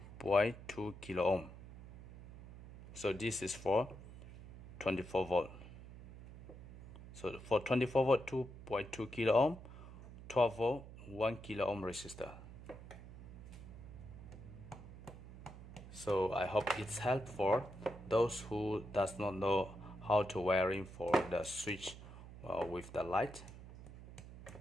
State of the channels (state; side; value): noise; right; hum, 14 dB below the sound